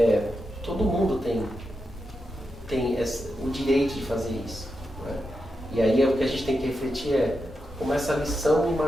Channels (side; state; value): both; normal; correlation 0.87